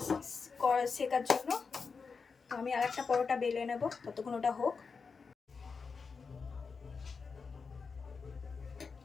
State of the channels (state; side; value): quieter; right; 5.1 dB